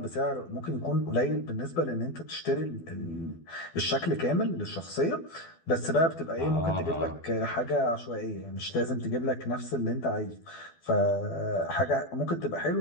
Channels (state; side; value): late; right; 12 ms